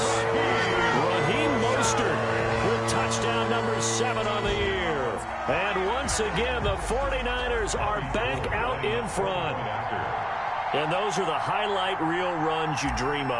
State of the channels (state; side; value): identical; both; correlation 1.00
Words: Raheem Mostert with touchdown number 7 on the year. And once again, the 49ers are back out in front. And those are the highlight reel runs you dream